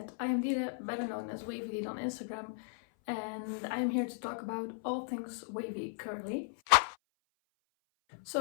I am Dide, better known as Wavy on Instagram, and I'm here to talk about all things wavy curly.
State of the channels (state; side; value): silent; right; 54 dB below the other